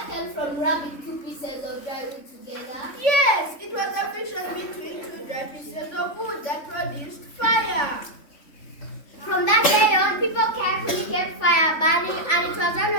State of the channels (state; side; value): late; right; 3.5 ms